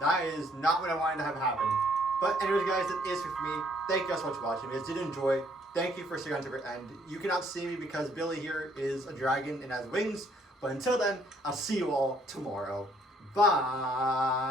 That is not what I wanted to have happen. But anyways, guys, that is it for me. Thank you guys so much for watching. If you guys did enjoy, thank you for sticking on to the end. You cannot see me because Billy here is a dragon and has wings. But until then, I'll see you all tomorrow.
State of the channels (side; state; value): both; normal; correlation 0.65